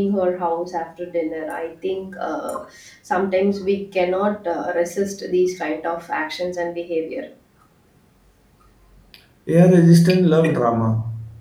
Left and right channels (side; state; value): both; identical; correlation 1.00